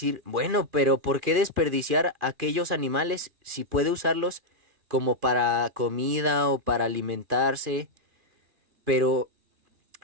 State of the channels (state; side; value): late; left; 2.4 ms